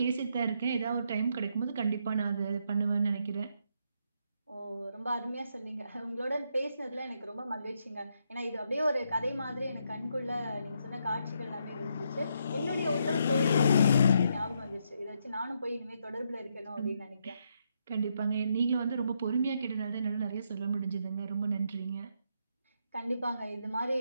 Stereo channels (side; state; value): both; inverted; correlation -0.77